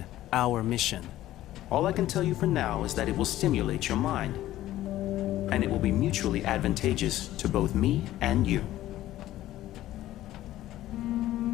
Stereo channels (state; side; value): quieter; right; 14.4 dB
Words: our mission? All I can tell you for now is that it will stimulate your mind. And it will be mutually advantageous to both me and you.